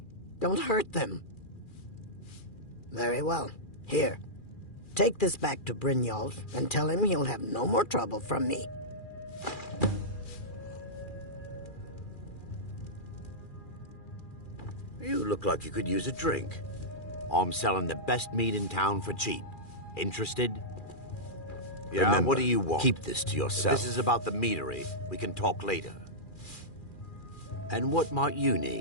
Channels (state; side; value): late; right; 2.4 ms